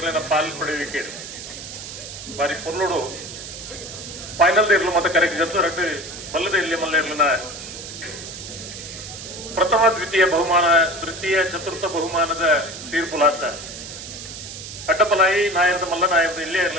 ಪಾಲ್ ಪಡೆಯುವಿಕೆ ಬಾರಿ ಪೊರ್ಲೋಡು ಫೈನಲ್ ಇರ್ಲು ಮತ್ತೆ ಕರೆಕ್ಟ್ ಜೊತೆ ರಟ್ಟು ಬಲ್ಲದ ಇಲ್ಲಿ ಮಲ್ಲ ಇರ್ಲಿನ ಪ್ರಥಮ ದ್ವಿತೀಯ ಬಹುಮಾನ ತೃತೀಯ ಚತುರ್ಥ ಬಹುಮಾನದ ತೀರ್ಪುಲಾತ ಅಡ್ಡಪಲಾಯಿ ನಾಯರದ ಮಲ್ಲ ನಾಯರದ ಇಲ್ಲೇ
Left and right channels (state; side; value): noise; right; hiss, 11 dB below the sound